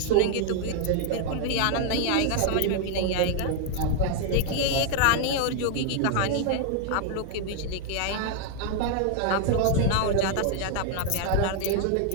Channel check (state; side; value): different; both; correlation 0.00